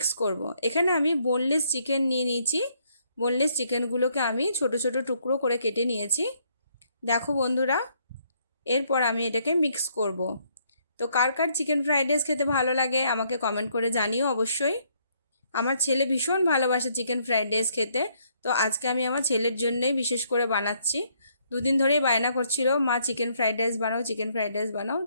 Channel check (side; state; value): both; inverted; correlation -0.69